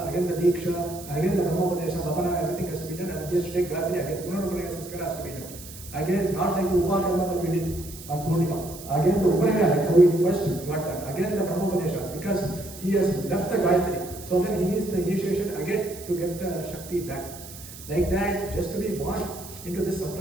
again the Diksha, again the Brahmopadesha, Bhavana, everything has to be done, and he has to take Gayatri, again Punarupaya Samskara has to be done. Again, not like the Upakarma that we did on Purnima. Again the Upanaya, like how we first got done. Again the Brahmopadesha, because he has left the Gayatri. So then he needs the initiation again to get the Shakti back. Like that, just to be born into this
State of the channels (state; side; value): noise; right; hiss, 15 dB below the sound